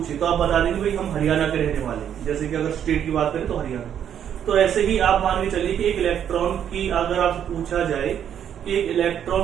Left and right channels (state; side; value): quieter; left; 9.3 dB